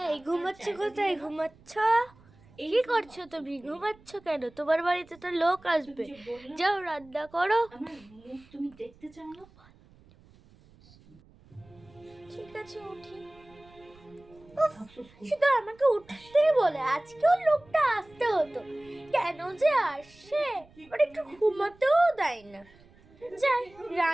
এই ঘুমাচ্ছ কোথায়? ঘুমাচ্ছ? কি করছো তুমি? ঘুমাচ্ছ কেন? তোমার বাড়িতে তো লোক আসবে, যাও রান্না করো। তুমি দেখতে চাও না? ঠিক আছে উঠি। শুধু আমাকে উঠতেই বলে, আজকেও লোকটা আসতে হতো, কেন যে আসে? ওর একটু ঘুমাতেও দেয় না। যাই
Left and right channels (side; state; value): right; noise; rumble, 27 dB below the sound